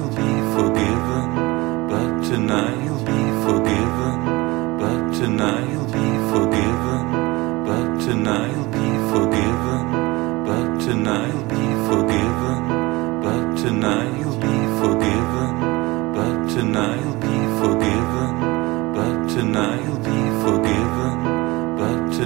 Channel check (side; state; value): left; quieter; 22.0 dB